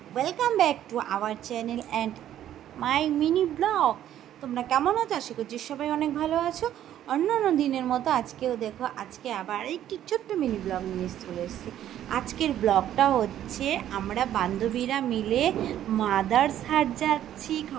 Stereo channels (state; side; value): quieter; left; 11.5 dB